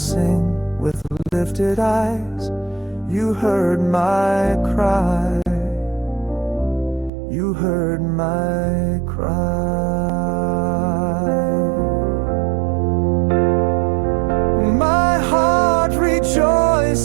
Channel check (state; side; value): drops out; left; at 7.1 s